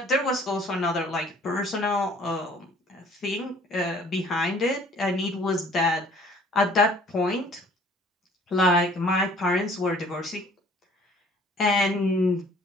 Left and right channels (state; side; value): normal; both; correlation 0.54